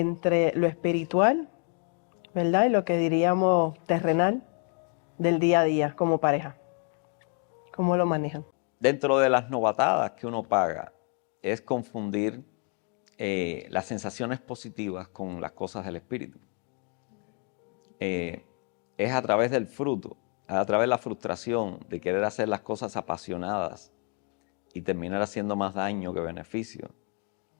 lo espiritual, ¿verdad? Y lo que diríamos terrenal del día a día como pareja? ¿Cómo lo manejan? Dentro de las novatadas que uno paga es confundir las sensaciones positivas con las cosas del espíritu. Es a través del fruto, a través de la frustración de querer hacer las cosas apasionadas y terminar haciendo más daño que beneficio,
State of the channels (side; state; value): right; quieter; 39.8 dB